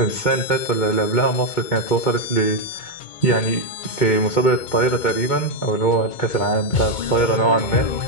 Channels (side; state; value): right; late; 2.2 ms